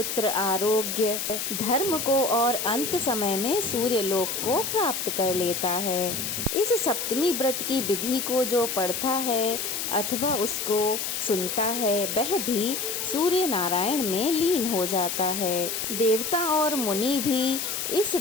आरोग्य, धर्म को और अंत समय में सूर्य लोक को प्राप्त कर लेता है। इस सप्तमी व्रत की विधि को जो पढ़ता है अथवा उसको सुनता है वह भी सूर्य नारायण में लीन हो जाता है। देवता और मुनि भी इस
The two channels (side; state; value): left; noise; hiss, 3 dB below the sound